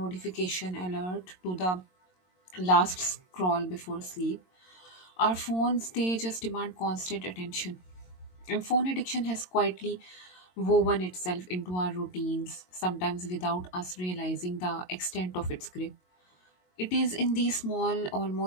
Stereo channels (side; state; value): right; late; 22 ms